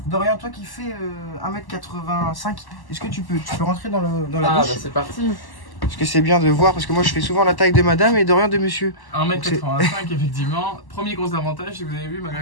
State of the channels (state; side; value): late; right; 1.1 ms